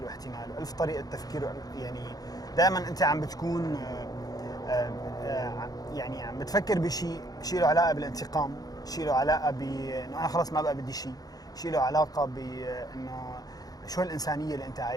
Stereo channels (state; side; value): late; right; 0.18 ms